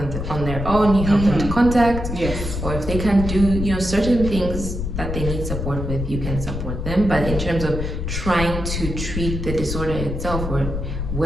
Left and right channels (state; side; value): noise; left; rumble, 4 dB below the sound